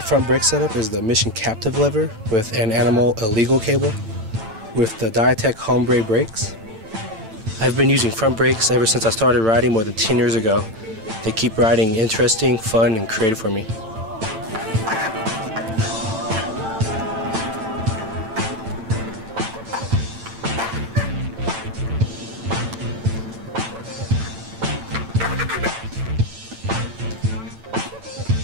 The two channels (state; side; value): late; left; 9.0 ms